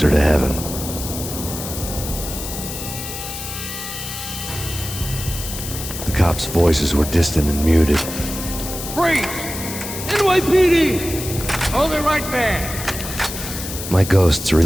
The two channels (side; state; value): left; noise; hiss, 8 dB below the sound